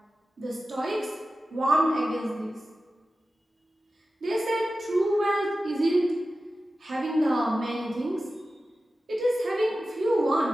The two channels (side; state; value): both; normal; correlation 0.94